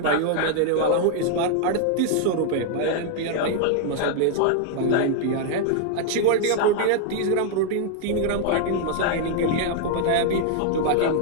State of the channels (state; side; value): different; both; correlation 0.00